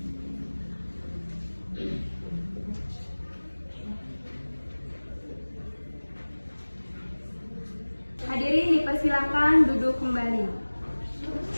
Hadirin dipersilakan duduk kembali.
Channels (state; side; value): inverted; both; correlation -1.00